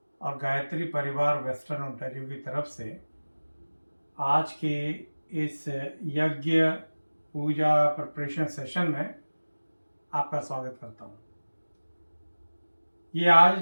और गायत्री परिवार वेस्टर्न ओंटारियो की तरफ से आज के इस यज्ञ पूजा प्रिपरेशन सेशन में आपका स्वागत करता हूँ। ये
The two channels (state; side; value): inverted; both; correlation -1.00